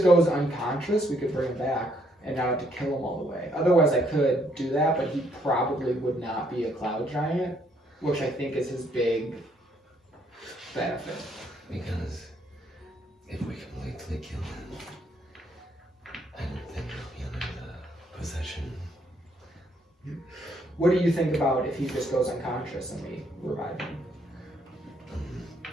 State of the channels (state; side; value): normal; both; correlation 0.70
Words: goes unconscious, we could bring him back and not have to kill him all the way. Otherwise, I could do that, but he probably would not be a cloud giant, which I think is his big benefit. Because if we completely kill him, I don't think he'll be under the possession. What do you think about if he just goes unconscious and we revive him?